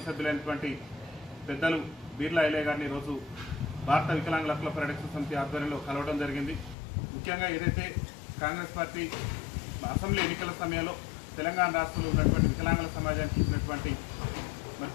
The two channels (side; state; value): right; drops out; at 6.8 s